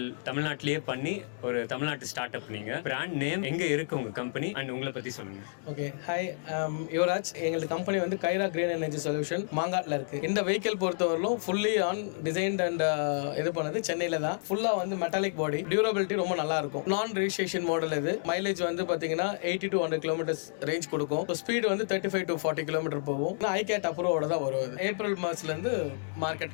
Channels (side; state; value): right; silent; digital silence